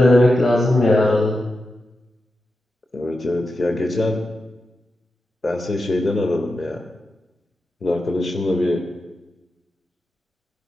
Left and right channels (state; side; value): normal; both; correlation 0.89